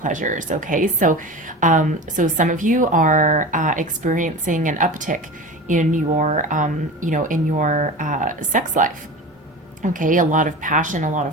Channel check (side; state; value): both; normal; correlation 0.31